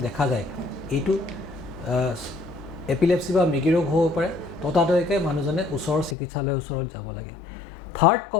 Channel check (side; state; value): right; drops out; at 6.2 s